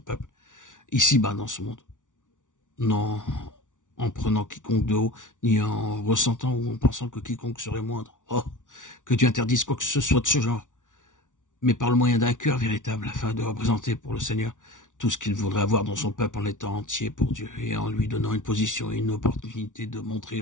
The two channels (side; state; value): right; late; 0.87 ms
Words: ici-bas dans ce monde. Non en prenant quiconque de haut, ni en ressentant ou en pensant que quiconque serait moindre. Oh, que Dieu interdise quoi que ce soit de ce genre, mais par le moyen d'un cœur véritable, afin de représenter pour le Seigneur tout ce qu'il voudrait avoir dans son peuple en étant entier pour Dieu et en lui donnant une position et une opportunité de montrer